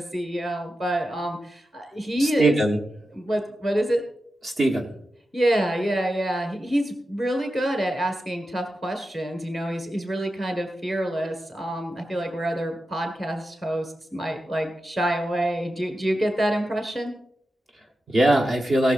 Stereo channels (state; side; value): normal; both; correlation 0.91